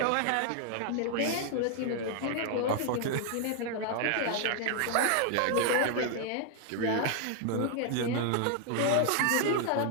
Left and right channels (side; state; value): both; different; correlation 0.00